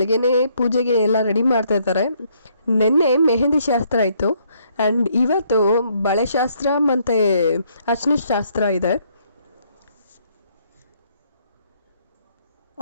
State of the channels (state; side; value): inverted; both; correlation -0.69